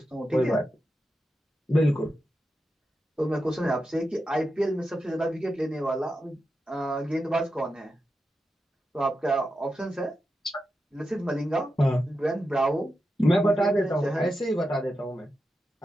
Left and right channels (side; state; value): both; normal; correlation 0.89